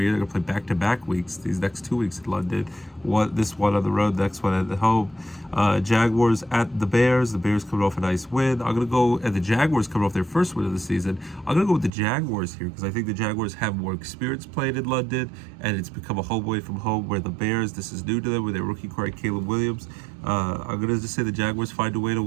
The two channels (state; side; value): drops out; left; at 11.9 s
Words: year. They're going to play back-to-back weeks, these next 2 weeks in London. This one on the road, next one at home. Jaguars at the Bears. The Bears coming off a nice win. I'm going to go at the Jaguars coming off their first win of the season. I'm going to go with the Jaguars here because I think the Jaguars have more experience playing in London, and it's become a home away from home, where the Bears, this is new to them with their rookie quarterback Caleb Williams. I'm going to just say the Jaguars find a way to